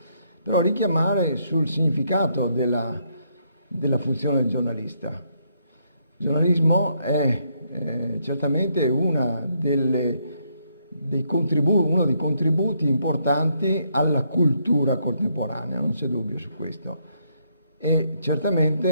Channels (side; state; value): both; inverted; correlation -0.73